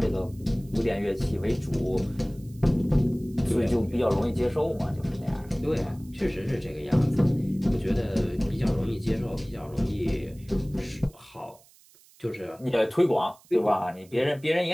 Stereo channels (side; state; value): right; noise; hiss, 27 dB below the sound